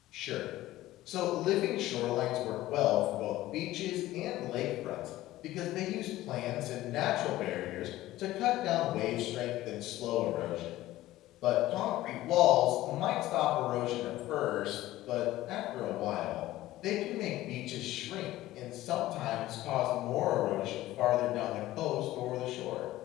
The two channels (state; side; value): quieter; right; 15.9 dB